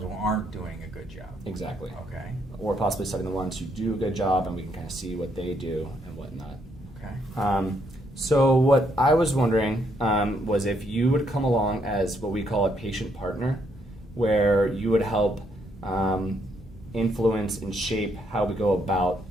who aren't doing a good job. Exactly. Okay. Or possibly studying the ones who do a good job, and we can kind of see what they do and whatnot. Okay. So what I was wondering was if you would come along as what we call a patient partner, where you would help influence and shape how we go about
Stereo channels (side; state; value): both; normal; correlation 0.73